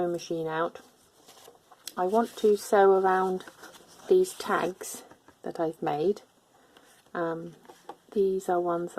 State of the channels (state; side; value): identical; both; correlation 1.00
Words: machine out. I want to sew around these tags that I've made. These are ones